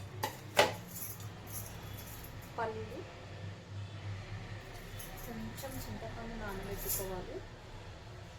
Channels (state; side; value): identical; both; correlation 1.00